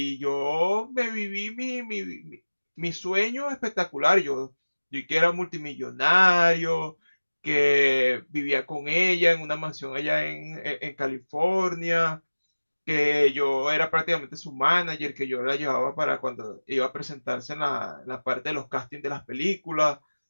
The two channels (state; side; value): inverted; both; correlation -1.00